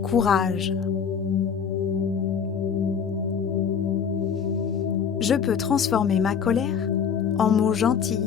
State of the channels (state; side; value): quieter; right; 7.0 dB